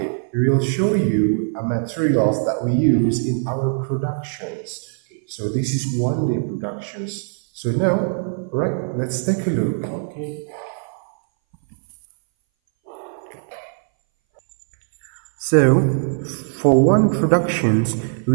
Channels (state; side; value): silent; left; 61 dB below the other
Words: we will show you materials that we use in our productions. So this is one day productions. So now, right, let's take a look. Okay. So, for one productions,